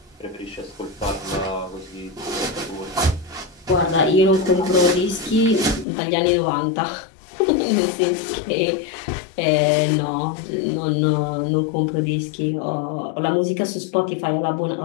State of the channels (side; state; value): right; drops out; at 5.9 s